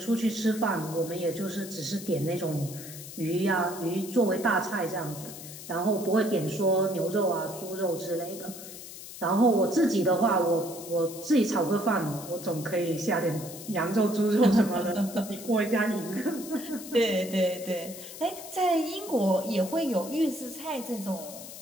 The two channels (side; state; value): left; noise; hiss, 13 dB below the sound